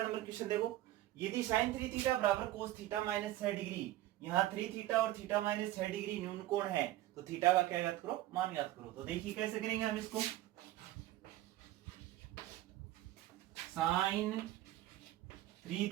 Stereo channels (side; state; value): left; quieter; 15.4 dB